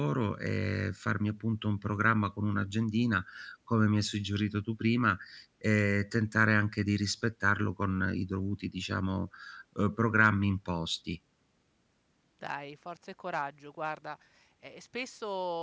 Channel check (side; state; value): both; identical; correlation 1.00